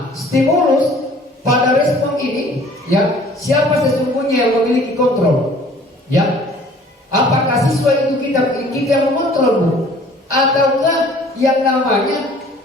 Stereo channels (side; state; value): both; normal; correlation 0.53